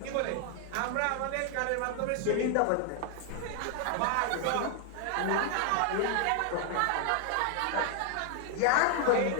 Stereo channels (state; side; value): different; both; correlation 0.00